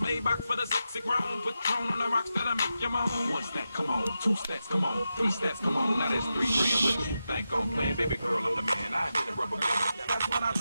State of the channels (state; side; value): inverted; both; correlation -0.89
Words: back for the sexy grown. Put tone on the rocks that'll make you moan. One step, come on. Two steps, come on. Three steps, come on. Now that's 3 grand. What you think I'm playing? Baby girl, I'm the man. I did a rubber band. That's when I